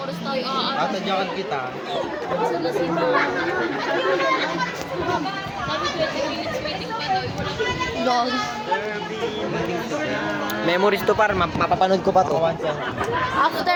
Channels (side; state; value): both; identical; correlation 1.00